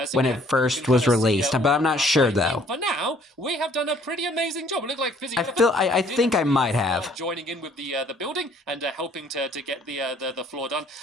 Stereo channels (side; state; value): both; normal; correlation 0.60